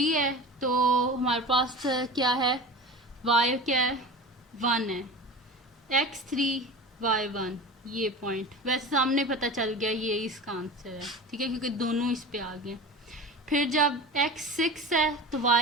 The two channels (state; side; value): normal; both; correlation 0.33